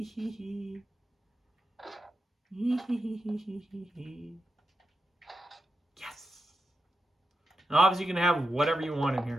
hee hee. Yes. And obviously you can have whatever you want in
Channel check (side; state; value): both; normal; correlation 0.88